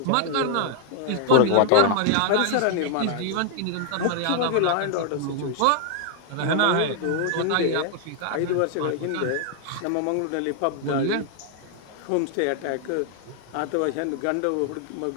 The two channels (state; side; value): different; both; correlation 0.00